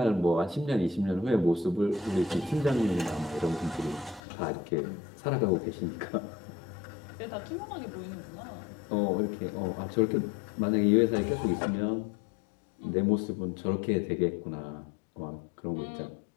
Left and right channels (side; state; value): right; drops out; at 4.2 s